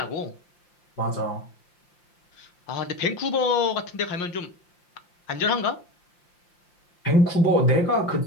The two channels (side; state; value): right; late; 5.8 ms